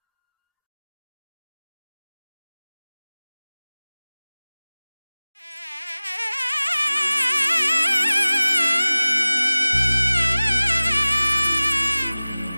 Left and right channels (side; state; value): both; inverted; correlation -0.98